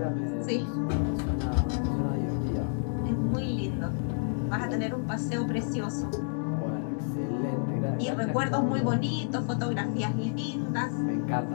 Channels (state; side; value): silent; right; digital silence